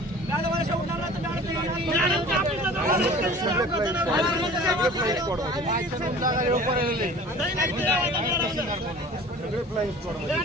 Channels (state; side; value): normal; both; correlation 0.43